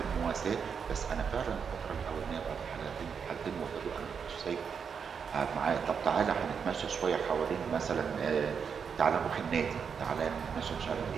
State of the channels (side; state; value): left; quieter; 6.5 dB